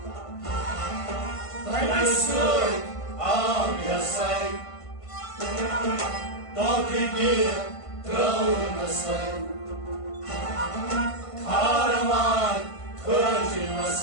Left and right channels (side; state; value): right; late; 1.5 ms